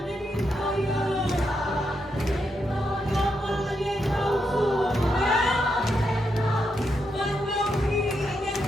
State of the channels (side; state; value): both; normal; correlation 0.82